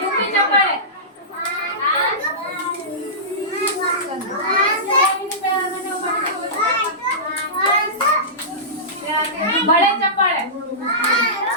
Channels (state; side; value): normal; both; correlation -0.20